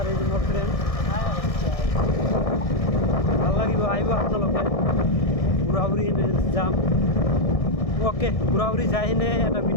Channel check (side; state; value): right; late; 1.6 ms